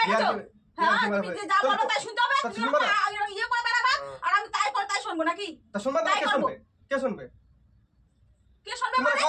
গেছো? হ্যাঁ, ইয়ার্কি মারা তুমি পাই- যে যা বলো তাহলে- তাই শুনতে হবে, তা তুমি শুনবা না? ইয়ে করে বেড়াবা, আর আমি তাই করে তাই শুনবো নাকি? তা শুনবা না, তাই কে করবো। শুনবে? কে শুনবে? কে শুনবে তোমার মানে?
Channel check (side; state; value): both; identical; correlation 1.00